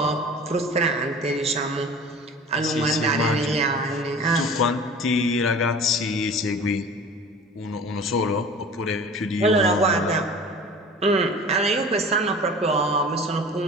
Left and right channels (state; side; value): normal; both; correlation 0.41